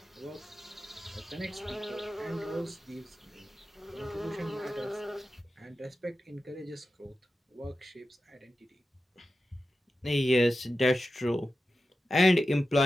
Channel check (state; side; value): normal; both; correlation 0.92